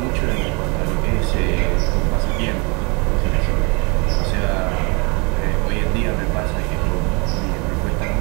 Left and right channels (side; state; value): left; quieter; 30.5 dB